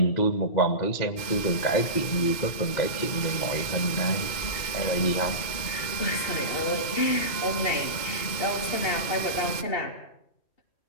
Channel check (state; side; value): late; right; 2.2 ms